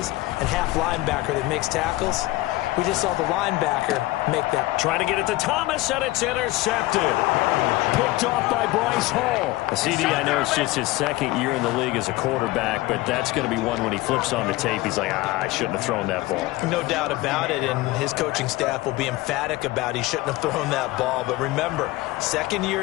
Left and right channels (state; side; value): quieter; right; 18.9 dB